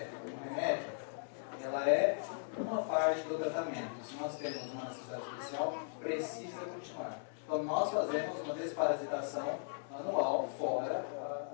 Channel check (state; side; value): silent; right; digital silence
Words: um remédio, ela é uma parte do tratamento. Se nós temos uma necessidade especial, precisa continuar. Então nós fazemos uma desparasitação anual fora